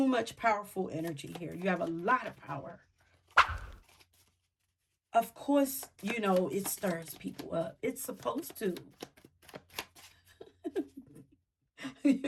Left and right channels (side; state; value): both; identical; correlation 1.00